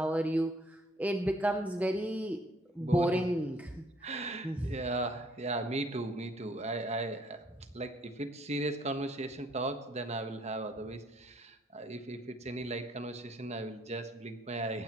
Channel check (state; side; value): normal; both; correlation 0.63